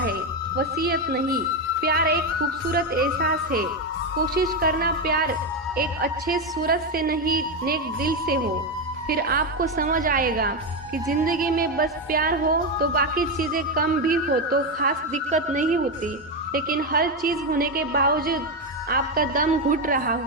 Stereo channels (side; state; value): both; normal; correlation 0.10